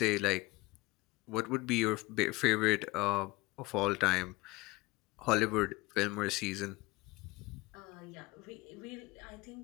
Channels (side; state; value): right; quieter; 21.8 dB